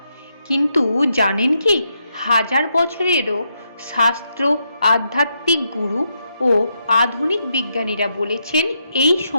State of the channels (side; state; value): both; inverted; correlation -0.80